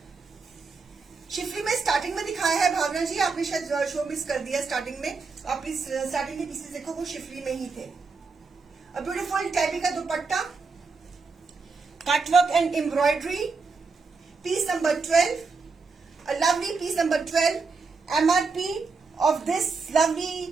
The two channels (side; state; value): left; quieter; 4.5 dB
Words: Schiffli में स्टार्टिंग में दिखाया है भावना जी, आपने शायद शो मिस कर दिया स्टार्टिंग में, आप इस स्टार्टिंग के पीसेस देखो वो शिफली में ही थे। A beautiful tabby का दुपट्टा, cutwork and embroidery, piece number 12, a lovely piece number 12. MRP of this